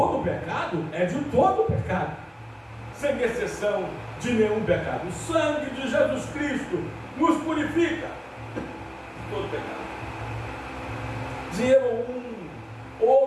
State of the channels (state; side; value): identical; both; correlation 1.00